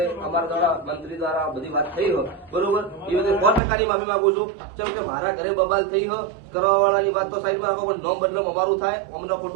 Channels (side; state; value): left; drops out; at 3.6 s